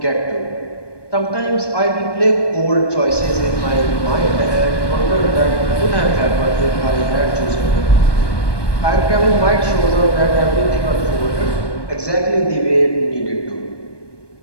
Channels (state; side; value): late; right; 1.2 ms